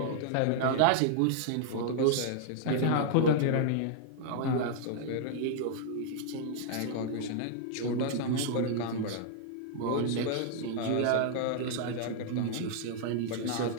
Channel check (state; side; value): different; both; correlation -0.01